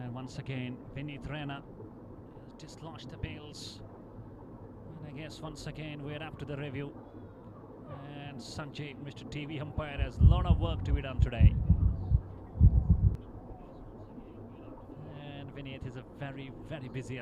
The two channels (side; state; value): both; identical; correlation 1.00